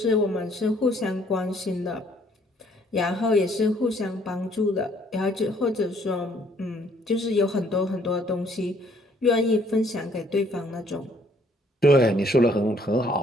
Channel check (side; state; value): both; normal; correlation 0.63